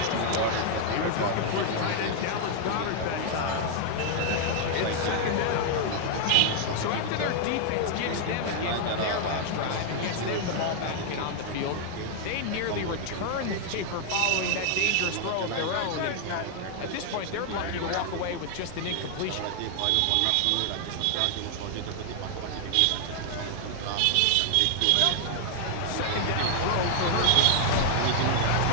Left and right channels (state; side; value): different; both; correlation 0.00